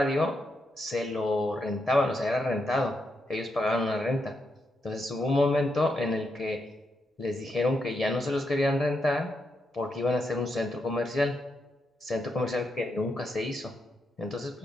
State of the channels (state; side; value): normal; both; correlation 0.82